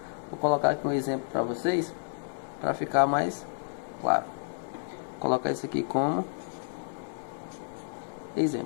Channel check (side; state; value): right; silent; 58 dB below the other